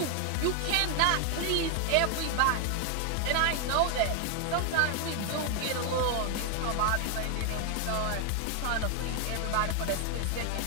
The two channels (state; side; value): different; both; correlation 0.00